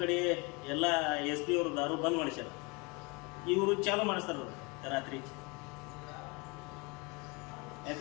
ಕಡೆ ಎಲ್ಲ ಎಸ್ ಪಿ ಅವರು ದಾರು ಬಂದ್ ಮಾಡಿಸ್ಯಾರ, ಇವರು ಚಾಲು ಮಾಡಿಸ್ತಾರ ರಾತ್ರಿ.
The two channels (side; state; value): right; quieter; 28.2 dB